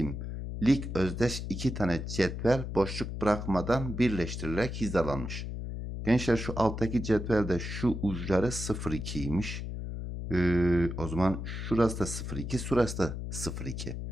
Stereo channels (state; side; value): noise; left; hum, 6 dB below the sound